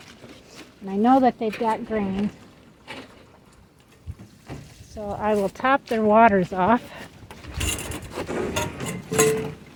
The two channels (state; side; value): identical; both; correlation 1.00